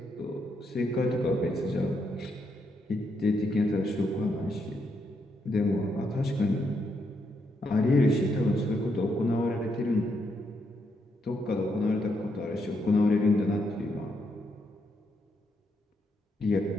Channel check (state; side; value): normal; both; correlation 0.78